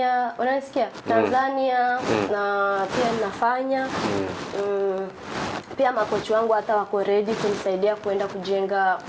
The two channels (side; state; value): both; identical; correlation 1.00